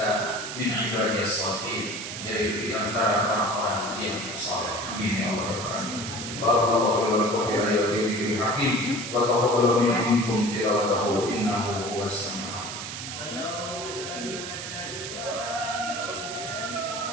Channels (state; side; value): noise; right; hiss, 7 dB below the sound